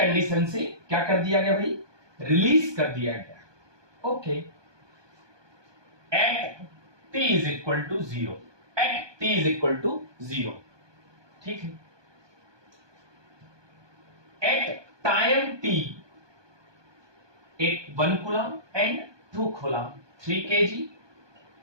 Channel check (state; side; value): late; left; 1.2 ms